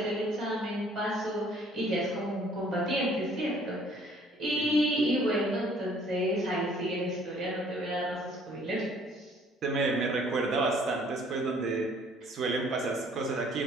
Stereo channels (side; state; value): both; normal; correlation 0.58